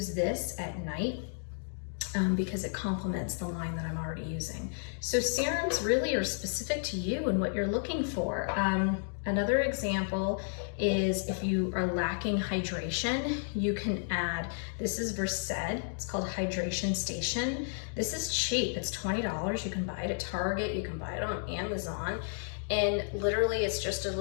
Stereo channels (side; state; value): right; silent; digital silence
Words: this at night because it complements the line that I'm already using. So serums really are specific to you and what you're looking for. Another example is if you are lacking hydration, you can add, this is Versed, it's called Hydration Station. This is cheap, it's $20. You can buy it at Target, you can buy it on Amazon, and literally it's just a